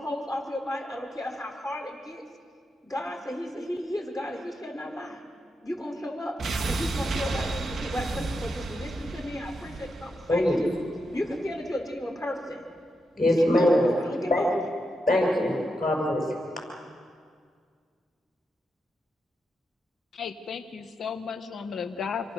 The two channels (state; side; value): normal; both; correlation 0.85